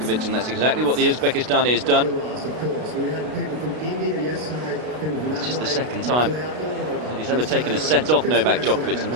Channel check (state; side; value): late; left; 32 ms